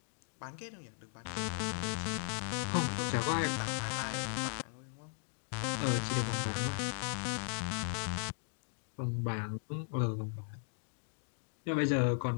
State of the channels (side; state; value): right; silent; digital silence